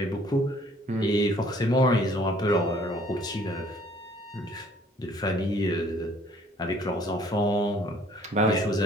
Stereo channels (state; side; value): normal; both; correlation 0.58